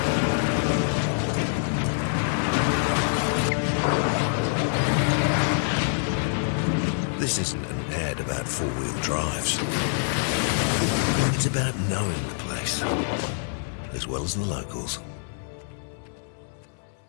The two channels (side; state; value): right; silent; 61 dB below the other